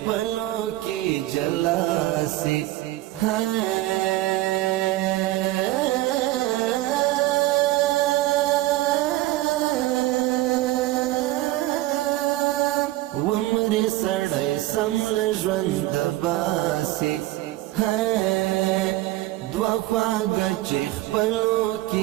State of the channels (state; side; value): quieter; left; 16.9 dB